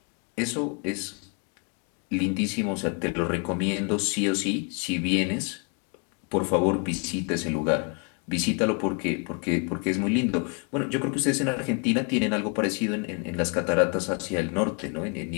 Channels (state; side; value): quieter; right; 34.1 dB